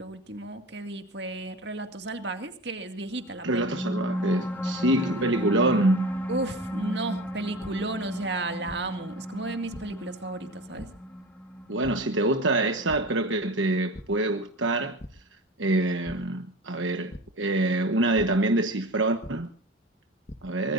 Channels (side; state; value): both; normal; correlation 0.33